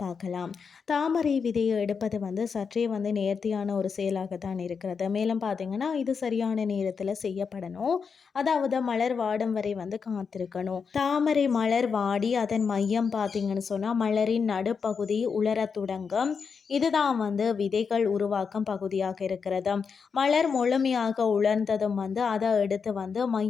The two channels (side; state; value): right; quieter; 5.8 dB